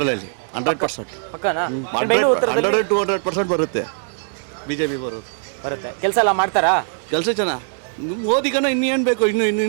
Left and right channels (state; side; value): silent; left; digital silence